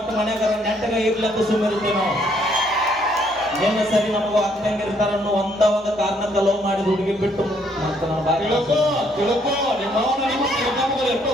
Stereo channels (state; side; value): normal; both; correlation 0.68